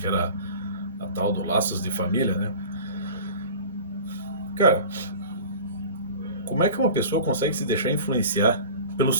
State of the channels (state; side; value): inverted; both; correlation -0.39